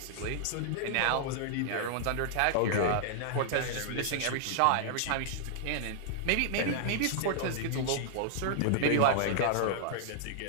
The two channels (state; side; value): different; both; correlation -0.01